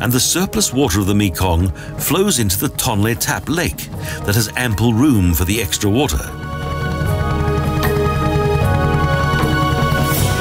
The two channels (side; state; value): both; identical; correlation 1.00